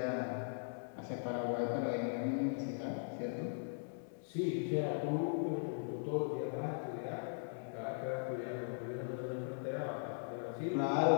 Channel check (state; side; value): silent; right; digital silence